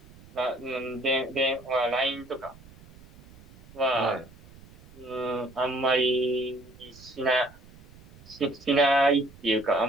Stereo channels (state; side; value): noise; right; rumble, 23 dB below the sound